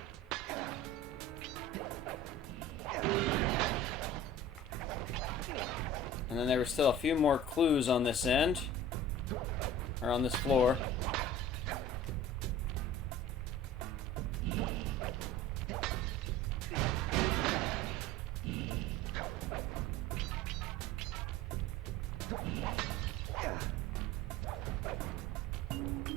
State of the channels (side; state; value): both; normal; correlation 0.39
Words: And then there were still a few more clues on this end. Or on this floor.